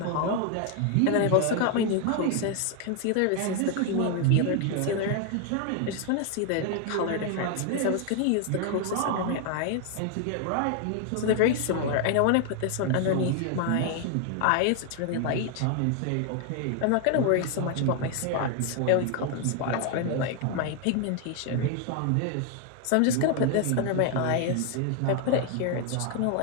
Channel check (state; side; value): different; both; correlation 0.01